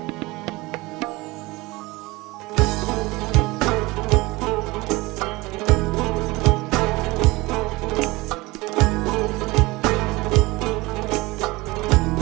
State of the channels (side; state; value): left; quieter; 21.9 dB